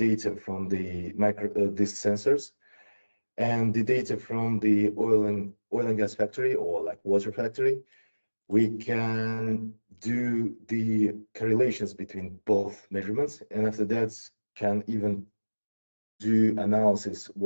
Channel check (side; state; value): both; inverted; correlation -1.00